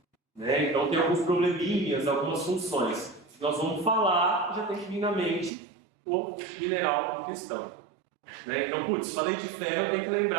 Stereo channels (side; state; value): left; drops out; at 5.5 s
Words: Né? Então, tem alguns probleminhas, algumas funções. Nós vamos falar, já tem que vir na mente o mineral em questão. Né? Então, putz, falei de ferro, eu tenho que